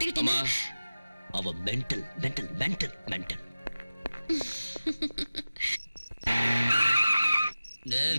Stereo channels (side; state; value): both; inverted; correlation -0.97